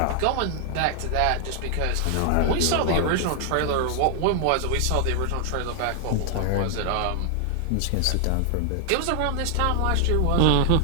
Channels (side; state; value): both; different; correlation 0.00